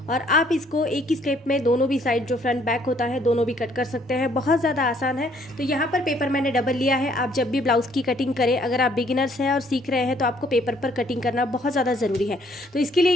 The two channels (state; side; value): normal; both; correlation 0.64